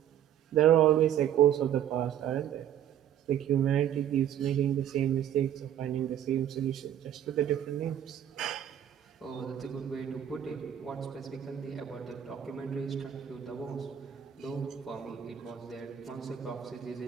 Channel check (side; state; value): left; quieter; 10.3 dB